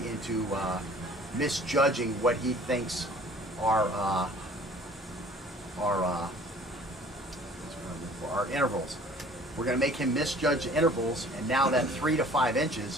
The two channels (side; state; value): both; normal; correlation 0.51